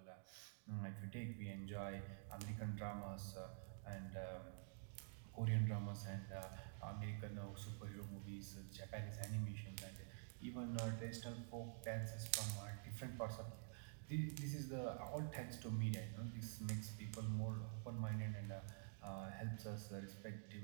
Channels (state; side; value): silent; left; digital silence